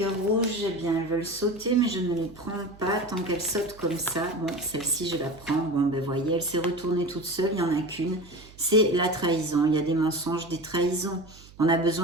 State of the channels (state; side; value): noise; right; hum, 22 dB below the sound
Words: rouge, eh bien, elles veulent sauter, mais je ne les prends pas tant qu'elles sautent comme ça. Bon, celle-ci, je la prends. Bon, ben, voyez, elle s'est retournée toute seule, il n'y en a qu'une. C'est la trahison. Il y a des mensonges, des trahisons. On a